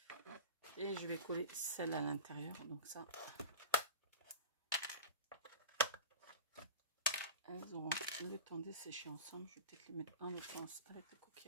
Et je vais coller celle à l'intérieur. Donc ça, elles auront le temps de sécher ensemble. Je vais peut-être les mettre dans le sens avec le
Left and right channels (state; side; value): inverted; both; correlation -0.30